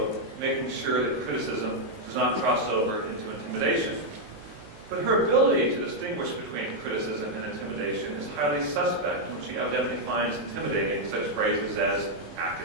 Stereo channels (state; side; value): late; left; 19 ms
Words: making sure that criticism does not cross over into intimidation. But her ability to distinguish between criticism and intimidation is highly suspect, and she evidently finds intimidating such phrases as